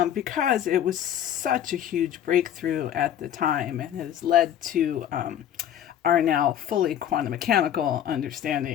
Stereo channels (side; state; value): right; quieter; 10.4 dB